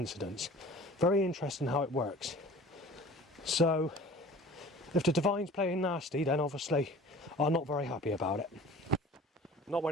Very interesting how it works. So if the divine's playing nasty, then obviously I'm not very happy about it. Not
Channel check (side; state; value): both; normal; correlation 0.44